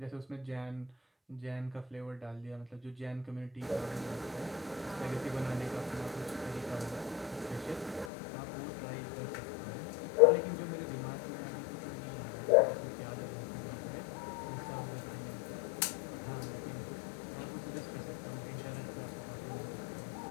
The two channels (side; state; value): right; drops out; at 8.1 s